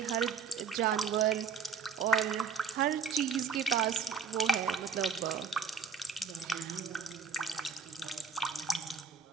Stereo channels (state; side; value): quieter; left; 5.8 dB